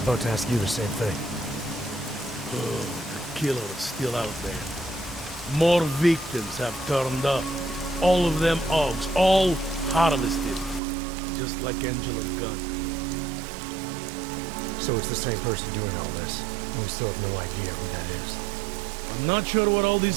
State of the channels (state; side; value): drops out; left; at 10.8 s